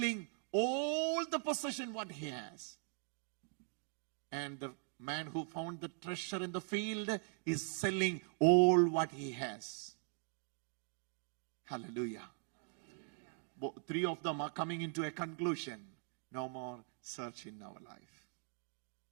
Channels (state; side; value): silent; left; 50 dB below the other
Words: all the possession what he has. And the man who found the treasure in the field is selling all what he has. Hallelujah. Three of them are coming into a conclusion. No more search in our life.